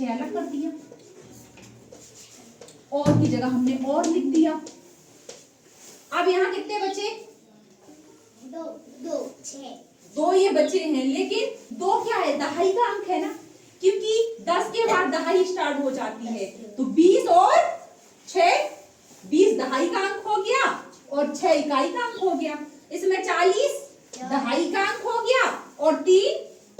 अलग कर दिया और की जगह हमने और लिख दिया। अब यहाँ कितने बचे, 2 ये बचे हैं। लेकिन 2 क्या है, दहाई का अंक है ना, क्योंकि 10 के बाद दहाई स्टार्ट हो जाती है। तो 20 और 6, 20 दहाई का अंक हो गया और 6 इकाई का अंक हो गया। इसमें 40 दहाई का अंक हो गया और 3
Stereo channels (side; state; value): both; identical; correlation 1.00